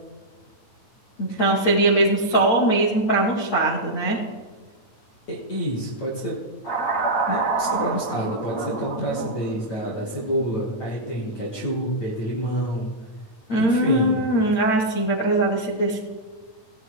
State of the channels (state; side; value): late; right; 8.7 ms